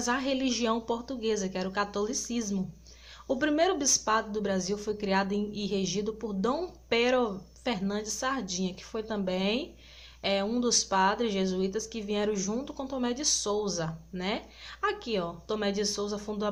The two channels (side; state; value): both; identical; correlation 1.00